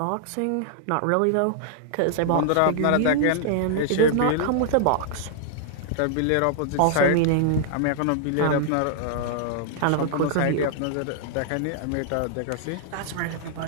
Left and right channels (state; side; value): different; both; correlation -0.01